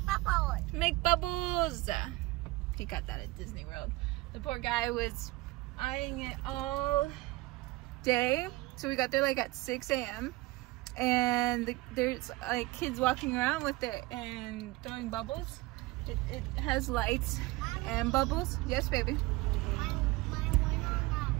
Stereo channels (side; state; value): left; quieter; 20.3 dB